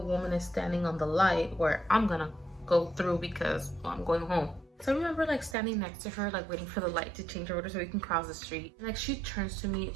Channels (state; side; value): drops out; left; at 5.6 s